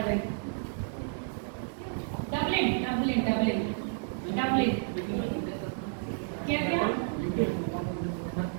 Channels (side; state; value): left; silent; digital silence